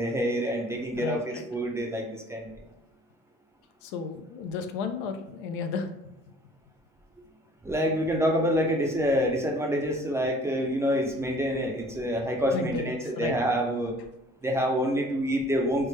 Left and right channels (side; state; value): both; normal; correlation 0.53